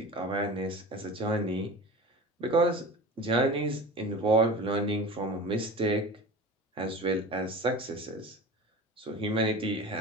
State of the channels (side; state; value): both; normal; correlation 0.34